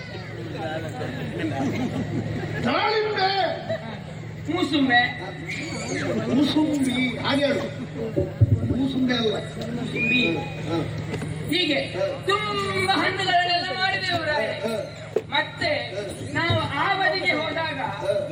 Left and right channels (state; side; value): identical; both; correlation 1.00